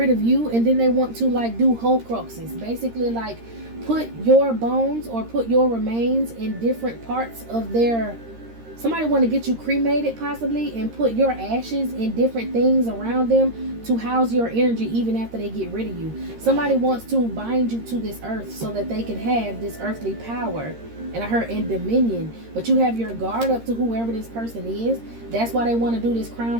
of you, and then they want to like do Horcruxes. Basically like put your bones or put your remains in different parts of their... Somebody want to get you cremated possibly, and put your ashes in different things around them to house your energy even after they get rid of you. Somebody wants to bind you to this earth so that they can have this earthly power. And I heard in dominion, but you have your guard up to whoever this person is. That's why they want to do this crown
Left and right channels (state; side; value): late; left; 13 ms